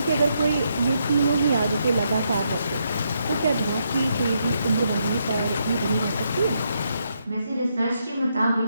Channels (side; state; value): both; inverted; correlation -0.78